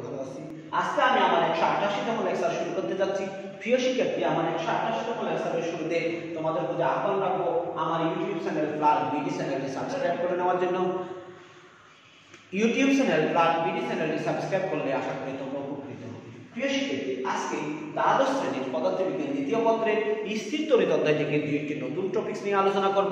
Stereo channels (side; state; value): both; identical; correlation 1.00